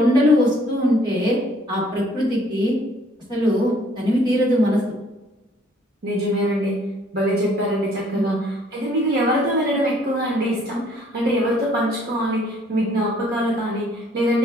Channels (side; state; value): both; normal; correlation 0.61